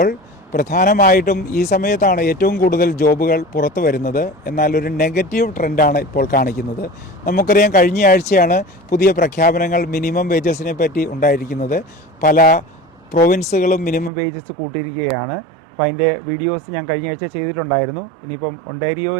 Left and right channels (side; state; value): left; drops out; at 14.1 s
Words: പ്രധാനമായിട്ടും ഈ സമയത്താണ് ഏറ്റവും കൂടുതൽ ജോബുകൾ പുറത്തു വരുന്നത്. എന്നാൽ ഒരു നെഗറ്റീവ് ട്രെൻഡാണ് ഇപ്പോൾ കാണിക്കുന്നത്. നമുക്കറിയാം, കഴിഞ്ഞ ആഴ്ചയാണ് പുതിയ പ്രഖ്യാപനങ്ങൾ മിനിമം വേജസിനെ പറ്റി ഉണ്ടായിരിക്കുന്നത്. പല പ്രൊവിൻസുകളും മിനിമം വേജസ് കൂട്ടിയിരിക്കുകയാണ്. അപ്പോൾ അതിൻ്റെ വീഡിയോസ് ഞാൻ കഴിഞ്ഞ ആഴ്ച ചെയ്തിട്ടുണ്ടായിരുന്നു. ഇനിയിപ്പം